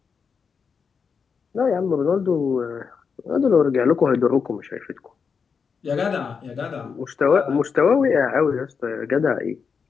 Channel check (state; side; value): quieter; right; 5.9 dB